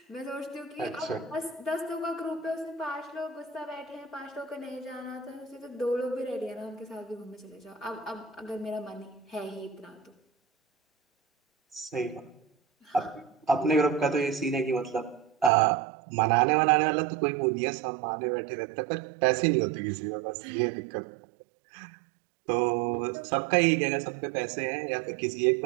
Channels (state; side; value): drops out; left; at 15.5 s